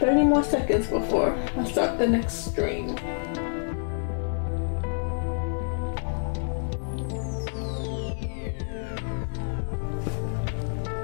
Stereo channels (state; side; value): silent; right; digital silence